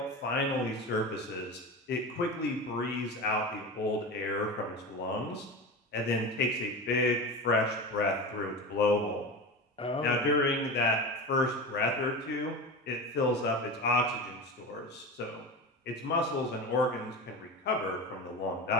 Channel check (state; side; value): normal; both; correlation 0.26